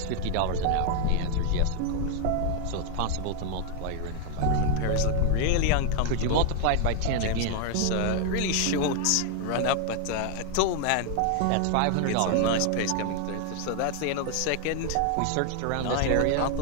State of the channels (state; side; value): different; both; correlation 0.00